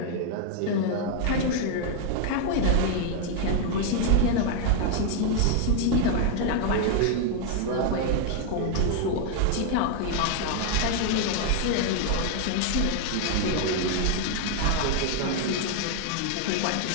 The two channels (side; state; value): both; different; correlation 0.00